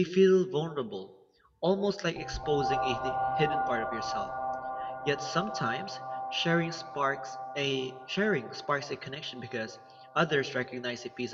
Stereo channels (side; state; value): both; identical; correlation 1.00